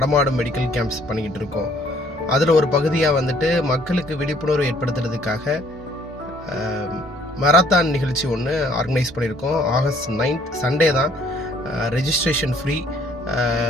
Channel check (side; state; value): both; normal; correlation 0.61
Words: மெடிக்கல் கேம்ப்ஸ் பண்ணிக்கிட்டு இருக்கோம். அதில் ஒரு பகுதியாக வந்துட்டு மக்களுக்கு விழிப்புணர்வு ஏற்படுத்துறதுக்காக மராத்தான் நிகழ்ச்சி ஒன்று ஆர்கனைஸ் பண்ணியிருக்கோம். ஆகஸ்ட் 9th சண்டே தான். Registration free.